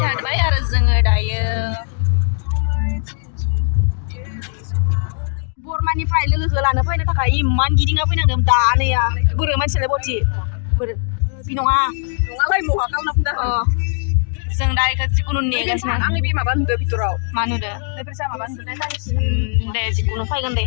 आरो जोङो दायो बरमानिफ्राय लोगोखौ लानो फैनो थाखाय इमान गिदिंना फैनांदों दा नैया बोरो मानसियालाय बथि बोरो बि नङालाय महा खालामना फैदों। जों दा इखौ जिखुनु नेगासिनो। आंनि बे माबा नुदो भितराव मा नुदो माबा नुदो दे जिखुनु फैगोन दे।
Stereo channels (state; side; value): silent; right; digital silence